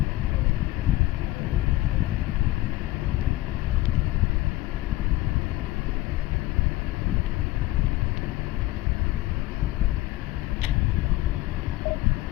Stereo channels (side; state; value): right; quieter; 17.3 dB